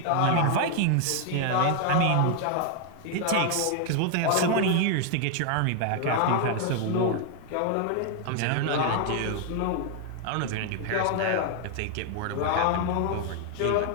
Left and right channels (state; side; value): different; both; correlation 0.00